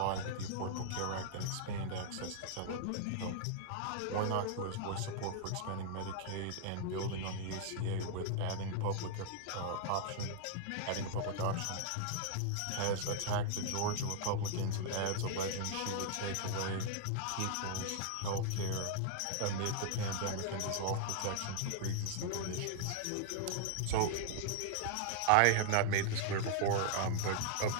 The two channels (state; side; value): different; both; correlation -0.01